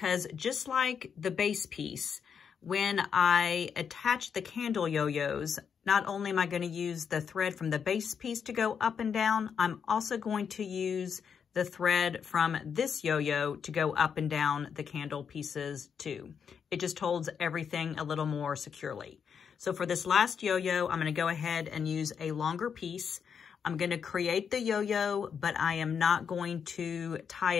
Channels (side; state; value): right; quieter; 7.0 dB